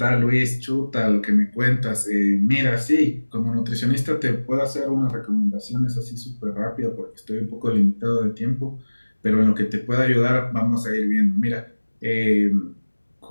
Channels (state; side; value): inverted; both; correlation -1.00